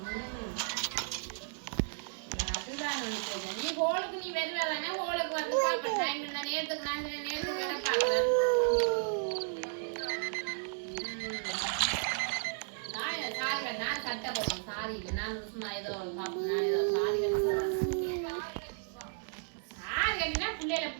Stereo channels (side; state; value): left; silent; digital silence